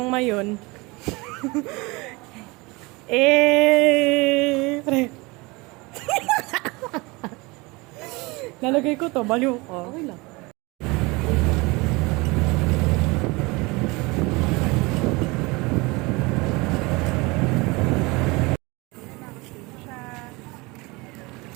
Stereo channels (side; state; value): left; quieter; 24.8 dB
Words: Mayon. Pre. Lalagay ko to, baliw ko. Okay lang.